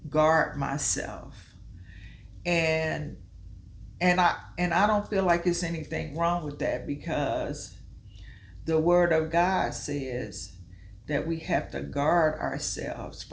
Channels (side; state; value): both; identical; correlation 1.00